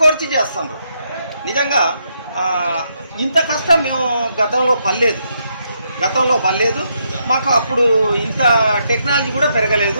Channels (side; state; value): both; inverted; correlation -0.77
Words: కోర్చి చేస్తున్నారు. నిజంగా ఇంత కష్టం మేము గతంలో పడలేదు. మాకు అప్పుడు ఇంత టెక్నాలజీ కూడా